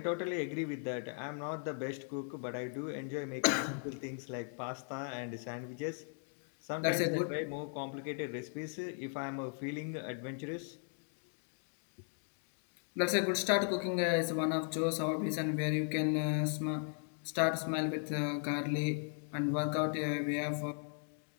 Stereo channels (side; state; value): right; silent; 53 dB below the other